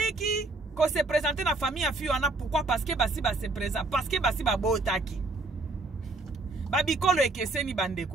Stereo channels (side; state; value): left; quieter; 3.2 dB